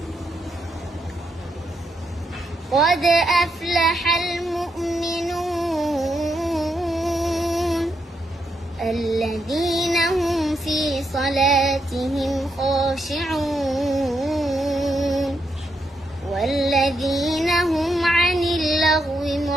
قد أفلح المؤمنون الذين هم في صلاتهم خاشعون والذين هم عن اللغو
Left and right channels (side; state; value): both; normal; correlation 0.80